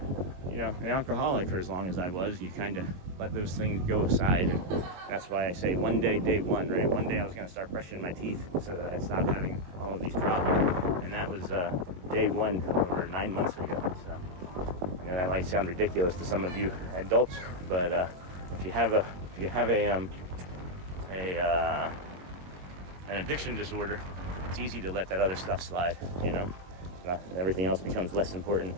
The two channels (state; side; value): late; left; 22 ms